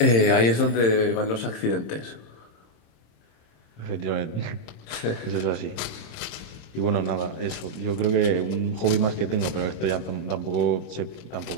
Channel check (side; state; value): right; late; 26 ms